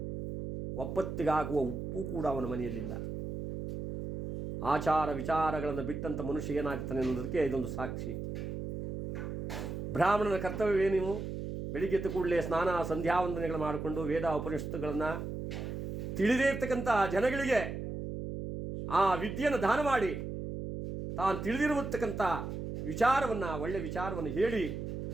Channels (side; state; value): right; noise; hum, 5 dB below the sound